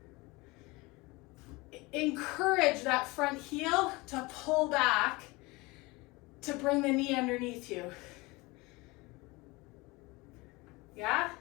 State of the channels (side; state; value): right; quieter; 23.7 dB